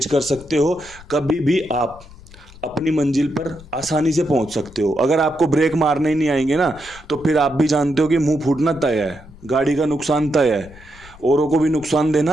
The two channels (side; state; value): left; noise; rumble, 20 dB below the sound